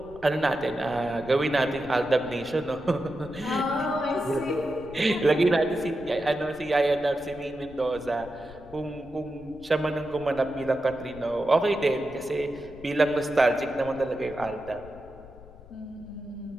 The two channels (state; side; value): noise; left; rumble, 20 dB below the sound